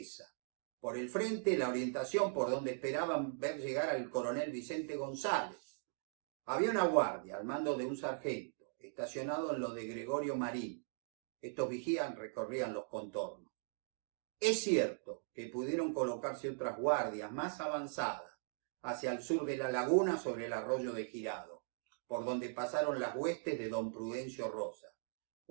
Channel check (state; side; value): silent; left; digital silence